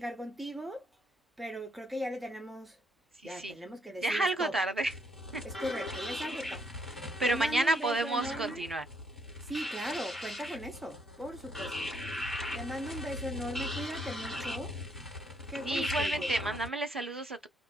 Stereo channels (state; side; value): normal; both; correlation 0.72